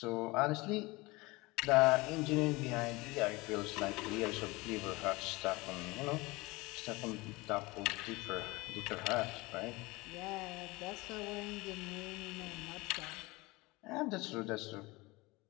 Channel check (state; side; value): quieter; right; 22.8 dB